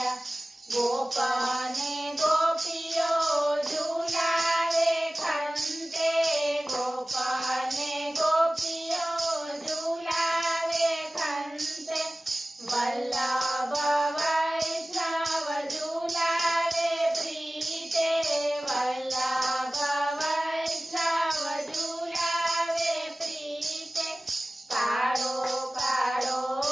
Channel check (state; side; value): normal; both; correlation 0.97